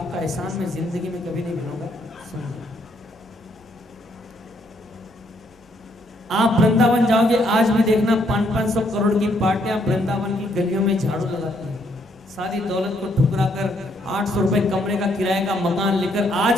एहसान मैं जिंदगी में कभी नहीं भूलूंगा। आप वृंदावन जाओगे आज भी देखना 500-500 करोड़ की पार्टियां वृंदावन की गलियों में झाड़ू लगाती हैं, सारी दौलत को ठुकरा कर 800 रुपए कमरे का किराए का मकान लेकर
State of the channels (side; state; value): both; normal; correlation 0.71